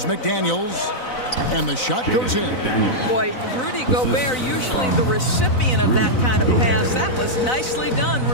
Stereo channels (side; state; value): right; late; 4.0 ms